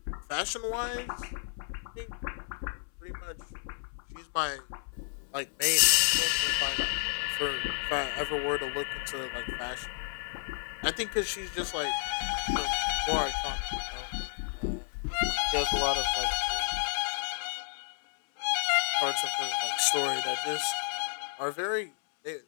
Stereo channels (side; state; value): right; silent; 57 dB below the other